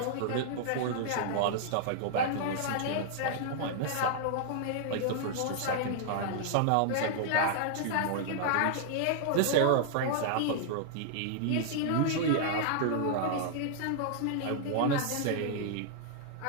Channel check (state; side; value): different; both; correlation -0.01